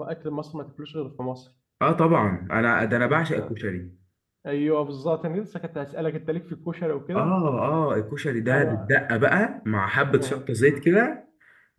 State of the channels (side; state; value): both; identical; correlation 1.00